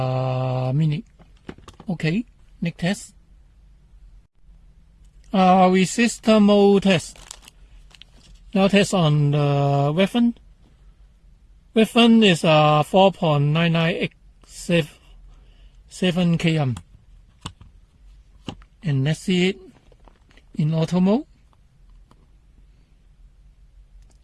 minute. Okay, next test. Resistor mode test. Now test on the weapon. Weapon is 4.9987 km. And let's see it in auto mode.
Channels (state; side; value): identical; both; correlation 1.00